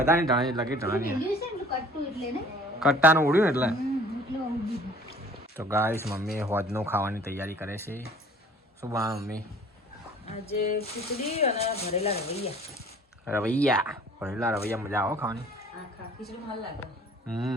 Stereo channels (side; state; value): both; normal; correlation 0.51